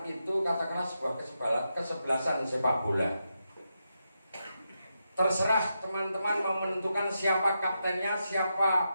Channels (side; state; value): both; inverted; correlation -0.86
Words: itu katakanlah sebuah kesebelasan sepak bola. Terserah teman-teman mau menentukan siapa kaptennya,